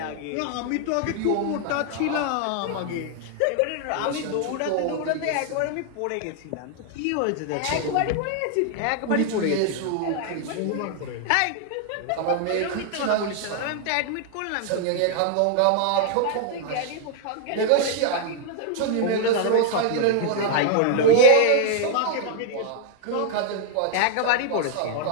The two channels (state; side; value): different; both; correlation 0.00